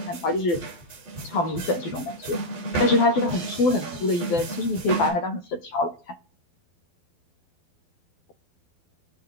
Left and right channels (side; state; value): right; late; 11 ms